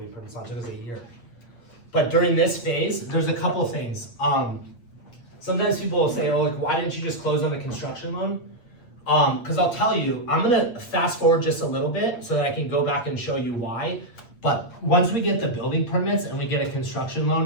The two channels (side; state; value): right; late; 8.6 ms